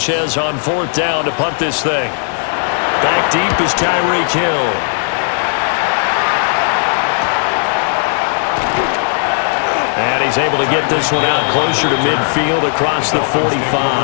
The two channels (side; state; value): right; silent; digital silence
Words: on fourth down to punt this thing. Back deep is Tyreek Hill. And he's able to get this one out closer to midfield across the